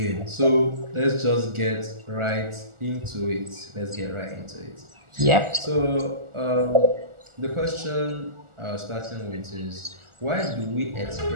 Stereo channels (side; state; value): left; late; 1.4 ms